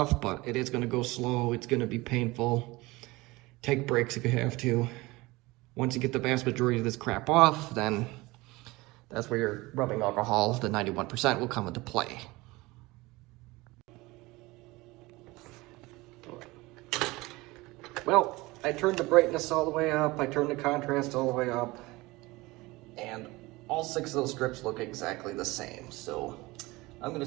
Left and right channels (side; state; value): left; quieter; 21.5 dB